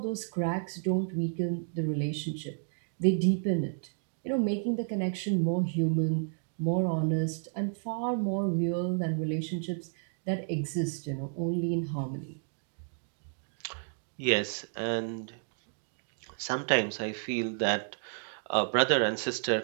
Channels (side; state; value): left; silent; digital silence